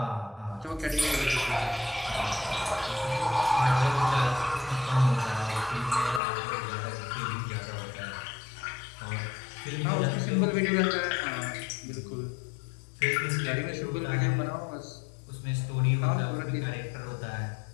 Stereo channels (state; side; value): drops out; right; at 6.2 s